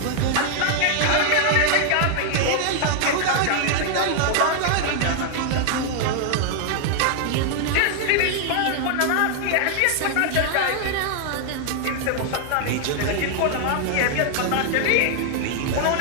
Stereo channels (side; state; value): both; different; correlation 0.00